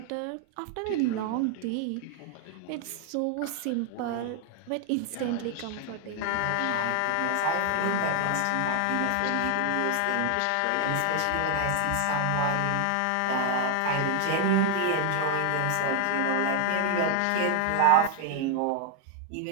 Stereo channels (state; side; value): different; both; correlation 0.00